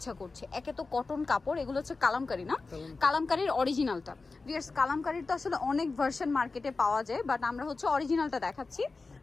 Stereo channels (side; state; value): right; quieter; 3.9 dB